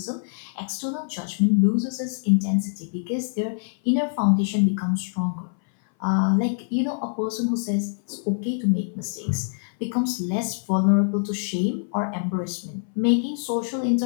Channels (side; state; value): right; silent; 59 dB below the other